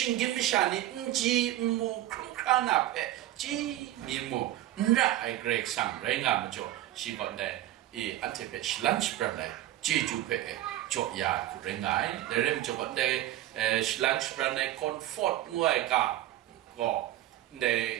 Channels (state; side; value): quieter; left; 14.1 dB